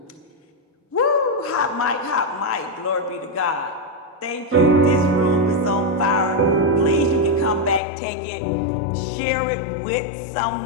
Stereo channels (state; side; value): drops out; right; at 7.8 s